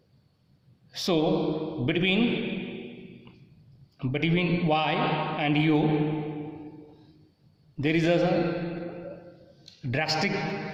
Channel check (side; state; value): both; identical; correlation 1.00